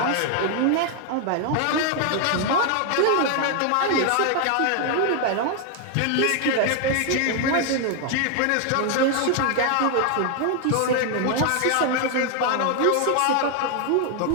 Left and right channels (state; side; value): different; both; correlation 0.00